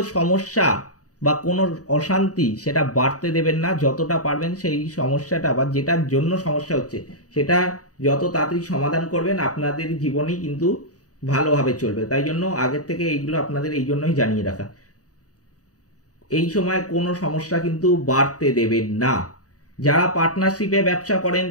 সমস্যা বা কোনো অশান্তি সেটা বাড়তে দেবেন না। যতটা পারবেন সেই সমস্যাটা বা যেটার জন্য সমস্যা হচ্ছে সেটা যত তাড়াতাড়ি সমাধান করবেন, আপনাদের জীবনই কিন্তু ভালোভাবে চলবে। তাই জন্য আগের থেকে এইগুলো আপনাদের এই জন্যই জানিয়ে রাখা। এই সময় কোনো সমস্যা কিন্তু বাড়তে দেবেন না। যারা পার্টনারশিপে ব্যবসা করেন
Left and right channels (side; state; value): right; late; 0.67 ms